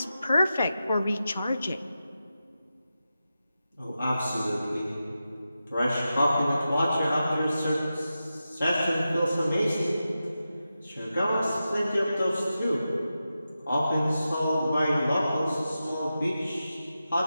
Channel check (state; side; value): inverted; both; correlation -0.91